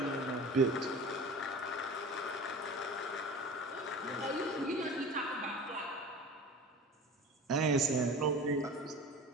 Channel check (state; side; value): normal; both; correlation 0.36